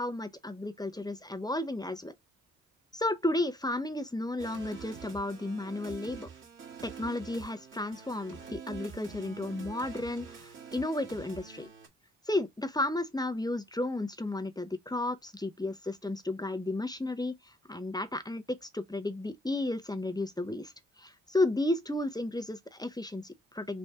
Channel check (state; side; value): normal; both; correlation 0.71